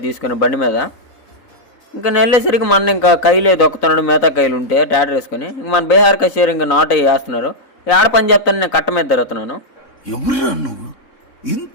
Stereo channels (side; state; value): right; late; 4.0 ms